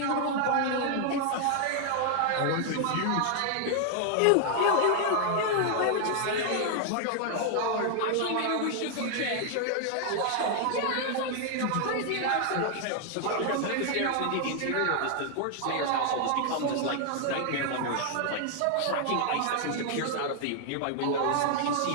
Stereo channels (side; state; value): both; different; correlation 0.00